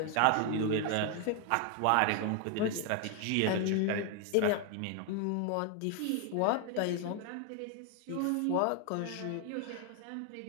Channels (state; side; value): different; both; correlation 0.01